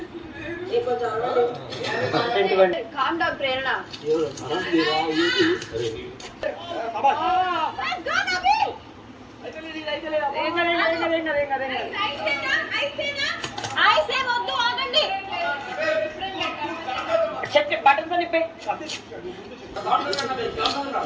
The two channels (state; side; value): identical; both; correlation 1.00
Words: కామ్ డౌన్ ప్రేరణ.